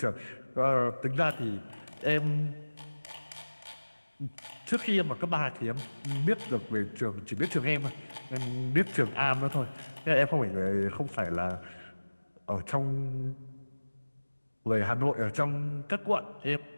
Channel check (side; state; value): both; inverted; correlation -1.00